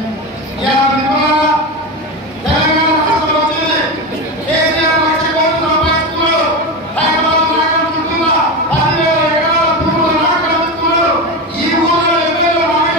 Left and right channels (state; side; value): normal; both; correlation 0.19